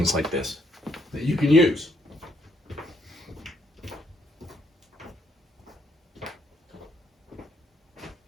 like this that you can use.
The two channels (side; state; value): both; normal; correlation 0.71